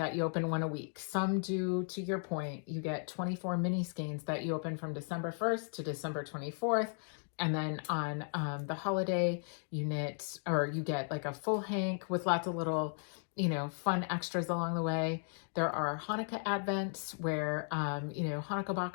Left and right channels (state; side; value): silent; right; 54 dB below the other